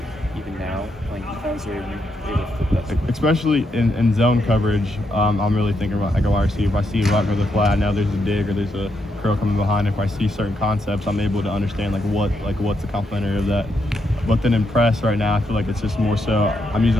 even now playing defense, or are you able to flip that switch? Especially in zone coverage, I'm really thinking about like a wide receiver. If I see right over the flat, now there's a dig or there's a curl coming behind. If I see certain concepts, I'm able to understand what's the complementary of that. But then in press right now, I feel like it's just more so I'm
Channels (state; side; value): normal; both; correlation 0.80